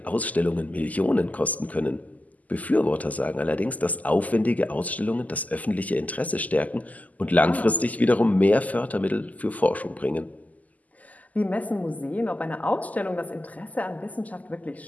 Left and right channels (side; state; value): right; late; 0.077 ms